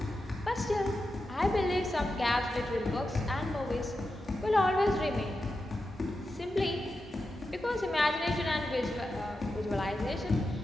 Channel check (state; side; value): normal; both; correlation 0.90